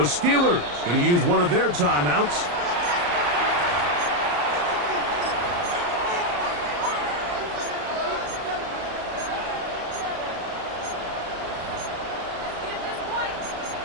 going to use one of their timeouts.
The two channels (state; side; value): late; left; 34 ms